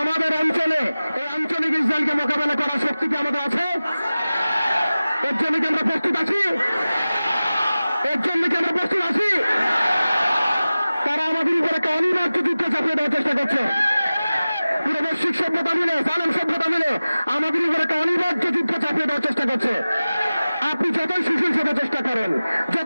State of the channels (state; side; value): inverted; both; correlation -0.96